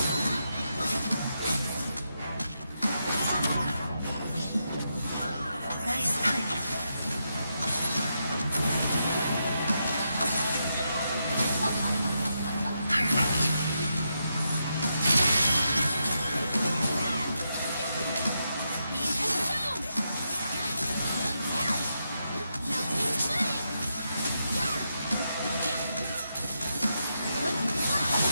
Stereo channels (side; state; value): both; inverted; correlation -0.84